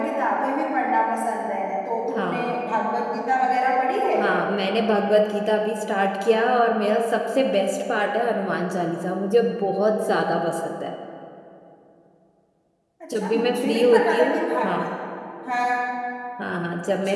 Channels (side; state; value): both; identical; correlation 1.00